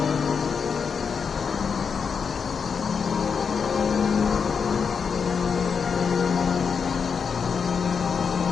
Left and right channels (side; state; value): right; quieter; 6.1 dB